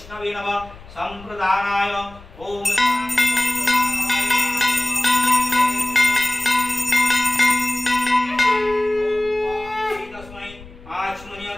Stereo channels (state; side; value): noise; left; rumble, 20 dB below the sound